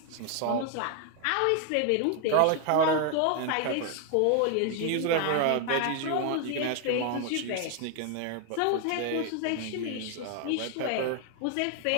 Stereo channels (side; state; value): both; different; correlation 0.00